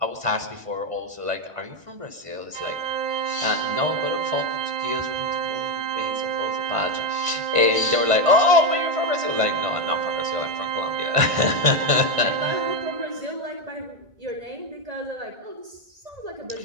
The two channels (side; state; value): left; late; 1.5 ms